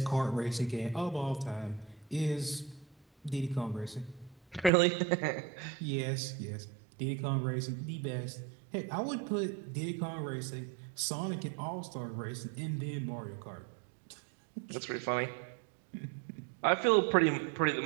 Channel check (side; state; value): left; drops out; at 4.7 s